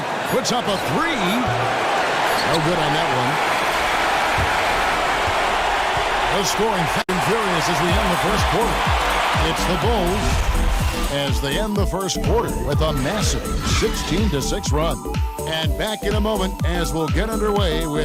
Puts up a 3. No good on that one. The scoring fast and furious as we end the first quarter. It's the Bulls as they end the first quarter with a massive 16-6 run. And back in a moment as we'll get underway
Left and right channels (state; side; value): identical; both; correlation 1.00